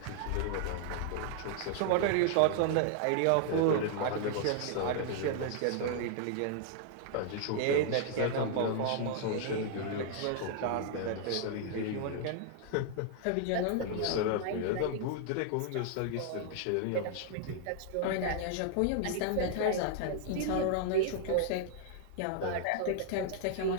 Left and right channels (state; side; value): different; both; correlation -0.01